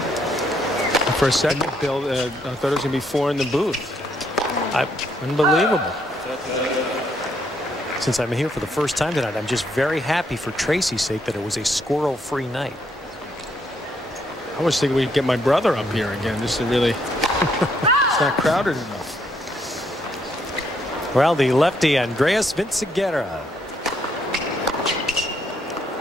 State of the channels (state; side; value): normal; both; correlation 0.72